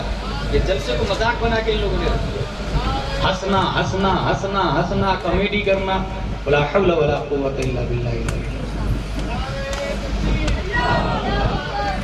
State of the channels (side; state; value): both; identical; correlation 1.00